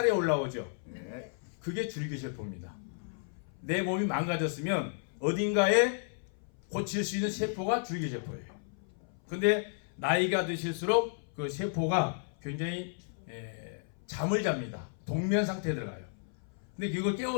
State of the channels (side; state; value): right; silent; 55 dB below the other